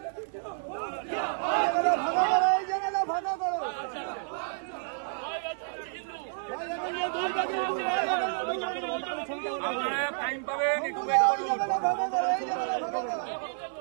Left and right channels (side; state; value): left; silent; digital silence